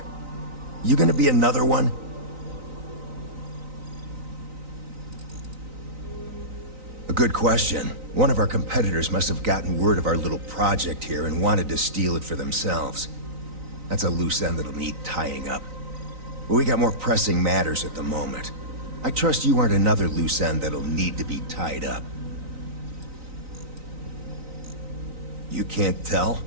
You gonna be another one? A good question. One of our competitors must have gotten word of our little project here and wanted to steal it for themselves. That's a loose end that'll need tying up. But we got more pressing matters at the moment. I trust you aren't another loose end that'll need to be tied up. You can't tell?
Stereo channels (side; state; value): left; late; 3.9 ms